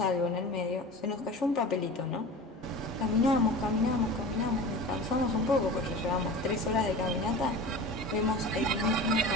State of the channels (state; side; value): normal; both; correlation 0.34